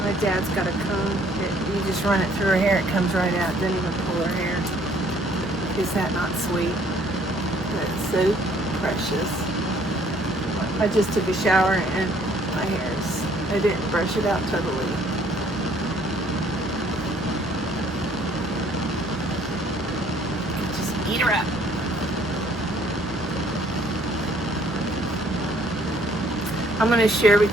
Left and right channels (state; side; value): normal; both; correlation 0.61